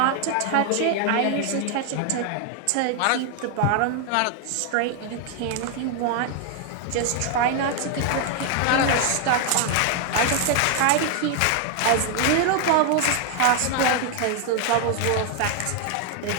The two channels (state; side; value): different; both; correlation 0.00